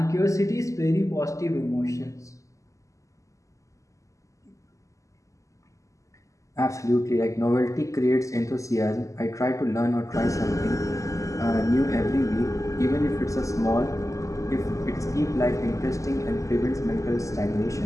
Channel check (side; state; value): right; late; 0.16 ms